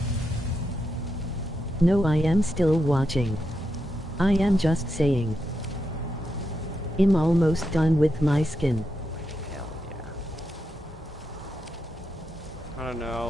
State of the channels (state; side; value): normal; both; correlation 0.85